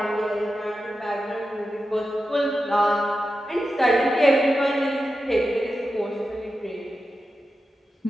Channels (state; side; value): normal; both; correlation 0.91